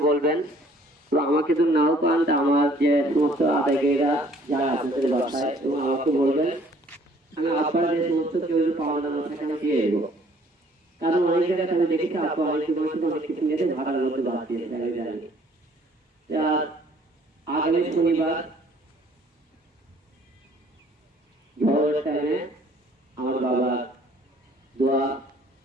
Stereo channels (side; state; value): both; normal; correlation 0.58